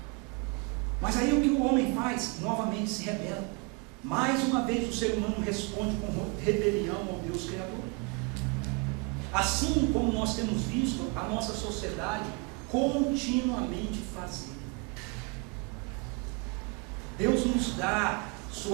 Mas aí o que o homem faz? Novamente se rebela. Mais uma vez o ser humano responde com rebelião ao Deus Criador. Assim como nós temos visto a nossa sociedade continuamente fazer. Deus nos dá sua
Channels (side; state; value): left; quieter; 29.5 dB